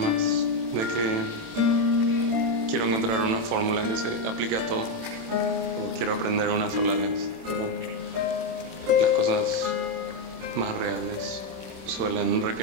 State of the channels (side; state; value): left; late; 27 ms